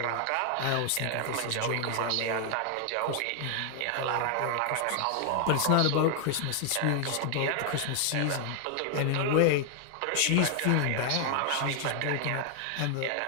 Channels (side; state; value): both; different; correlation 0.00